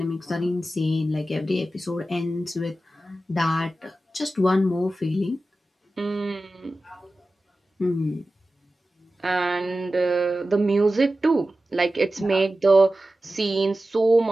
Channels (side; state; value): both; normal; correlation 0.94